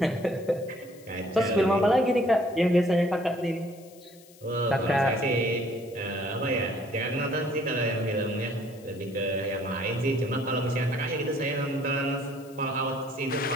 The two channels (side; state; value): left; noise; hiss, 25 dB below the sound